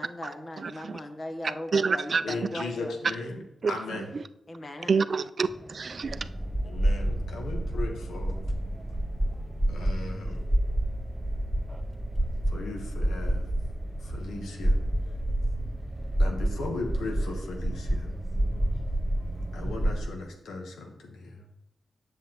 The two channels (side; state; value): both; normal; correlation 0.93